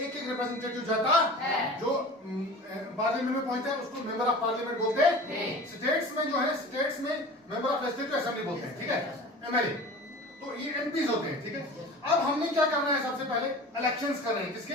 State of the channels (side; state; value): both; normal; correlation 0.39